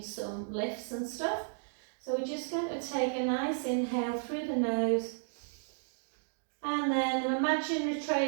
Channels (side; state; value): left; silent; digital silence